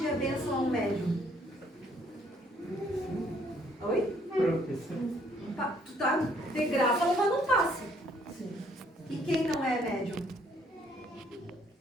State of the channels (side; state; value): both; normal; correlation 0.65